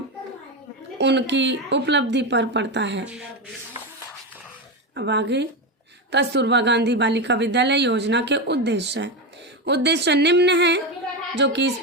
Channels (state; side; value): normal; both; correlation 0.14